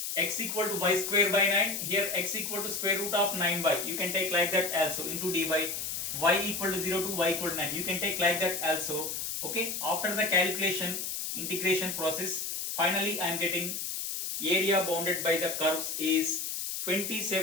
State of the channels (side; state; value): left; noise; hiss, 4 dB below the sound